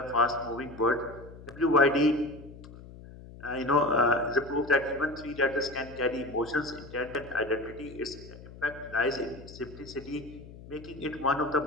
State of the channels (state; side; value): noise; left; hum, 17 dB below the sound